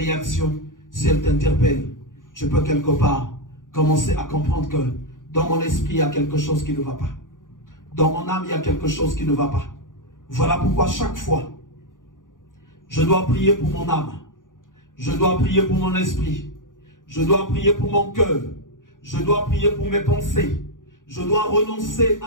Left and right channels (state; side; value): late; right; 0.88 ms